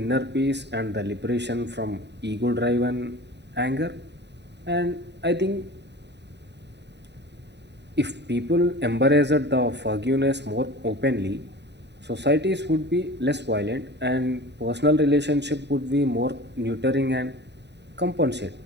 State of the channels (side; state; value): left; late; 0.50 ms